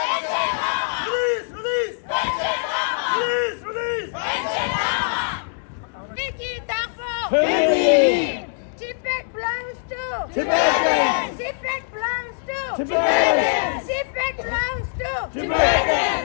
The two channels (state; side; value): silent; right; digital silence